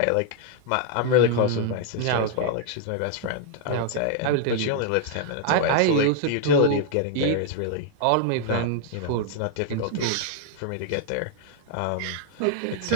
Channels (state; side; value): different; both; correlation 0.00